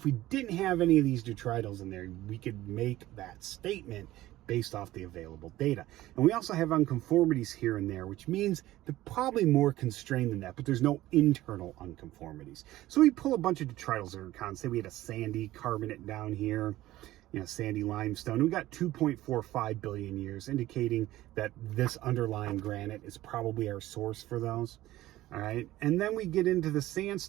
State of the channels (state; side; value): quieter; left; 15.8 dB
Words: we didn't have any of these detritus in there, we could make that statement based off the available data. And we also have unconformities here and there, which means they're probably more constrained than that, but there's no internal unconformities. So we pull a bunch of detrital zircons. Say we had a sandy carbonate down here, sandy limestone. And we got 2.45 billion years, indicating that this underlying granite is probably our source for those. All right, and then we get into the